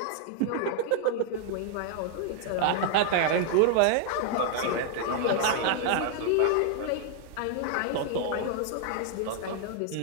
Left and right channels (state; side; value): different; both; correlation 0.00